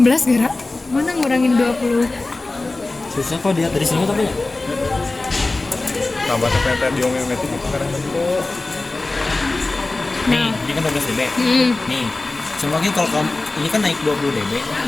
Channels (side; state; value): right; quieter; 3.2 dB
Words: Gara. Mana ngurangin 20? Susah kok dia dari sini tapi ya. Tambah teh diomeometik itu karena bentuk. Nih, ini kan 12 dB. Nih, semakin kalau kamu ini kan naik 20 dB.